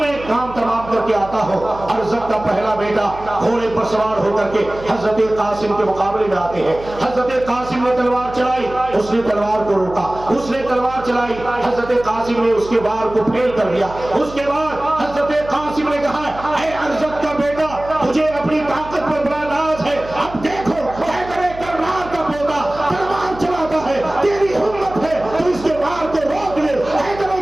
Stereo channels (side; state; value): right; noise; hum, 15 dB below the sound